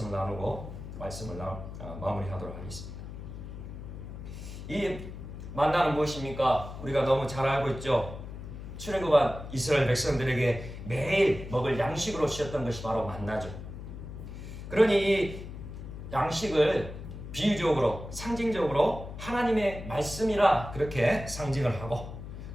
나누고 말씀을 마무리하도록 하겠습니다. 이 만나는 무엇입니까? 우리가 너무 잘 알고 있죠. 출애굽한 이스라엘 백성들에게 매일 먹을 양식으로 주셨던 것이 바로 만나죠. 그러니 이 양식을 비유적으로 상징적으로 하나님의 말씀이라 그렇게 상징을 하고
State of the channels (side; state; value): left; noise; hum, 10 dB below the sound